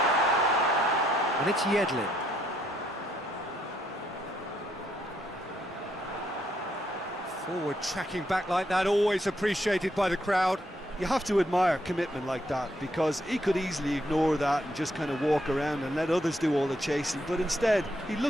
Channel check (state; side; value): normal; both; correlation 0.74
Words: And it's Yedlin. Forward tracking back like that, always appreciated by the crowd. You have to admire commitment like that, because he could easily ignore that and just kind of walk around and let others do all the chasing, but instead he